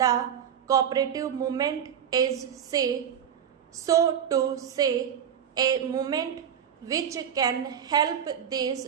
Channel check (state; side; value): quieter; left; 8.6 dB